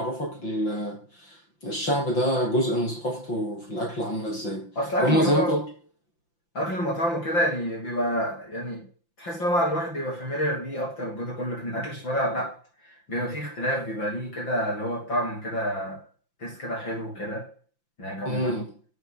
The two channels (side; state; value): right; late; 5.8 ms